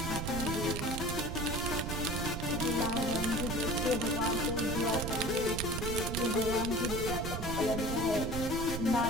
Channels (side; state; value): right; noise; rumble, 5 dB below the sound